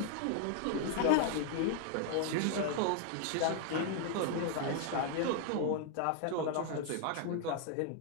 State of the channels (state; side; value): different; both; correlation 0.00